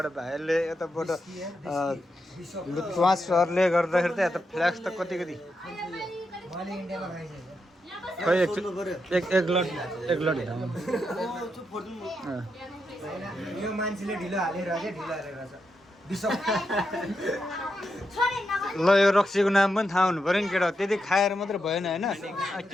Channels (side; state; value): both; normal; correlation 0.84